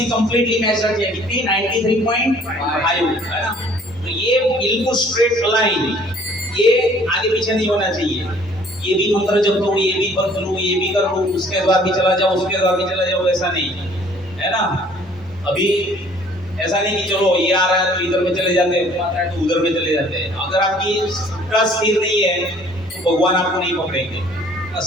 कंप्लीटली मैच रखिए, कितनी 93.5 है ना। तो ये बिल्कुल स्ट्रेट लाइन, ये आगे पीछे नहीं होना चाहिए। ये भी मंत्र जप लो, ये भी पढ़ लो, ये भी कर लो, उसके बाद भी चला जाओ, उसके बाद भी चला जाओ, ऐसा नहीं है ना। अभी ऐसा नहीं कि चलो ये आ रहा है तो इधर में चले जाते हैं, आता है तो उधर में चले जाते हैं। अगर आपकी श्रद्धा स्थिर नहीं है तो भगवान आपको नहीं पकड़ेंगे।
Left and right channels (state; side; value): normal; both; correlation 0.56